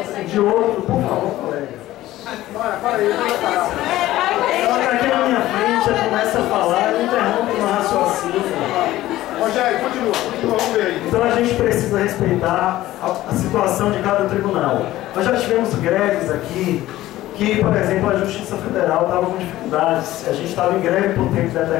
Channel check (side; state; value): right; quieter; 15.5 dB